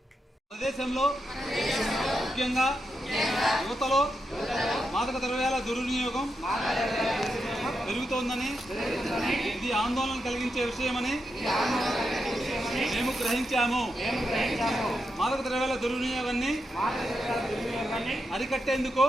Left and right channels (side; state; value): both; normal; correlation 0.85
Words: ముఖ్యంగా యువతలో మాదక ద్రవ్యాల దుర్వినియోగం పెరుగుతోందని, ఇది ఆందోళన కలిగించే విషయమని మేము గ్రహించాము. మాదక ద్రవ్యాల దుర్వినియోగాన్ని అరికట్టేందుకు